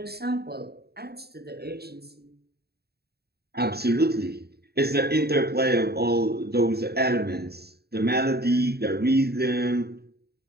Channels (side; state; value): left; late; 0.46 ms